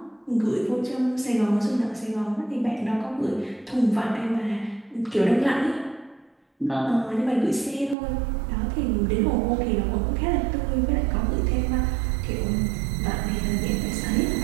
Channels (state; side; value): drops out; left; at 8.0 s